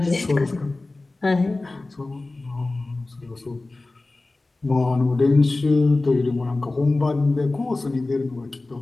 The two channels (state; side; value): quieter; right; 3.1 dB